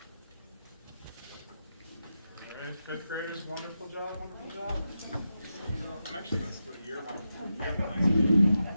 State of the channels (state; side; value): inverted; both; correlation -0.89